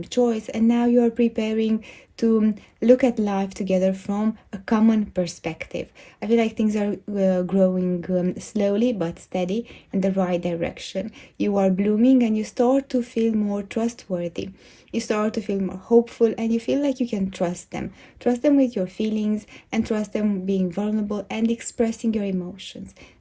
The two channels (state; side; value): identical; both; correlation 1.00